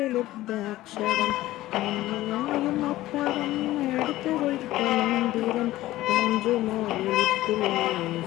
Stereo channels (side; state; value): right; quieter; 16.1 dB